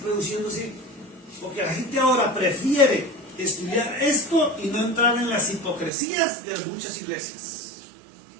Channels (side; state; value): left; drops out; at 5.9 s